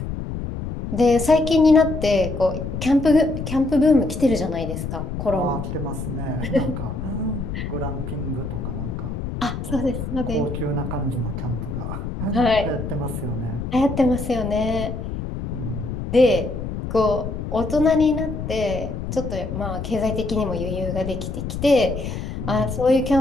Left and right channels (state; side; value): noise; left; rumble, 5 dB below the sound